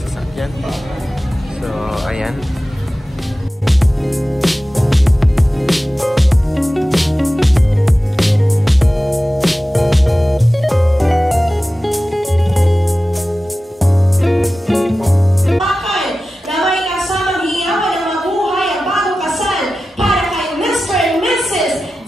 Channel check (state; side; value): normal; both; correlation 0.95